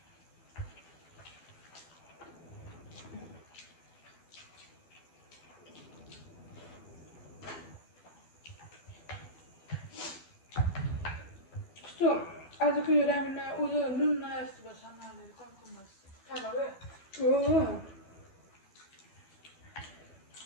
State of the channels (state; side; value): late; right; 12 ms